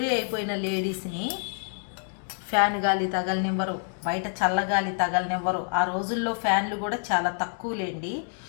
అయిపోయిన లేడీస్ని ఫ్యాన్ గాలి తగలనివ్వరు, బయట చల్లగాలి తగలనివ్వరు. ఆ రోజుల్లో ఫ్యాన్లు కూడా చాలా తక్కువలేండి.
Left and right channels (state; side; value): silent; right; 60 dB below the other